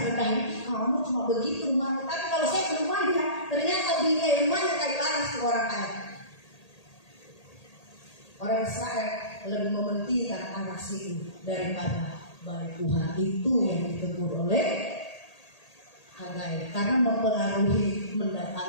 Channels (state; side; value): late; right; 1.8 ms